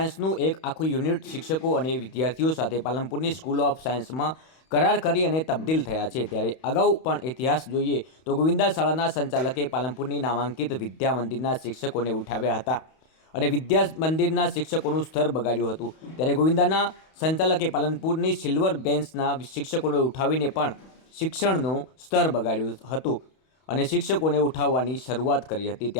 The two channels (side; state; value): right; late; 31 ms